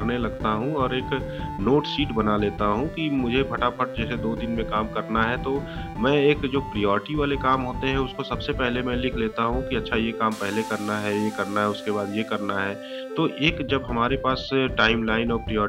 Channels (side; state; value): both; identical; correlation 1.00